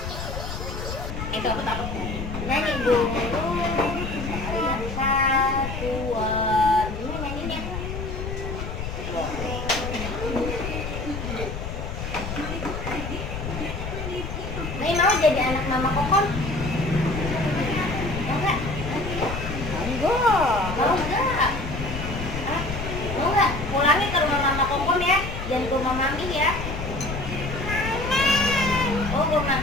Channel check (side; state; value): left; noise; rumble, 6 dB below the sound